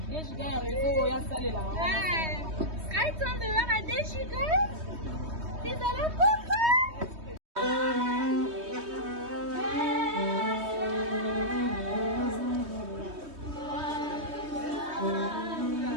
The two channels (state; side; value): late; left; 3.2 ms